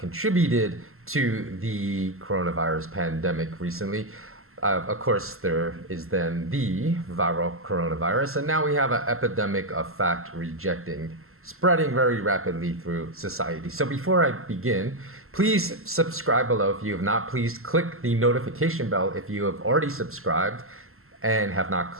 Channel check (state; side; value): late; left; 0.62 ms